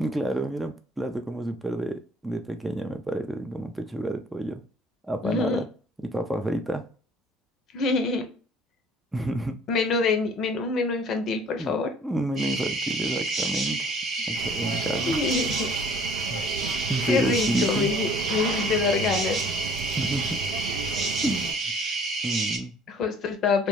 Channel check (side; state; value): both; normal; correlation 0.53